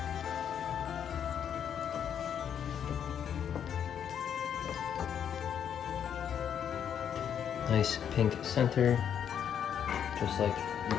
Nice pink center, just like you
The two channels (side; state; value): right; quieter; 8.7 dB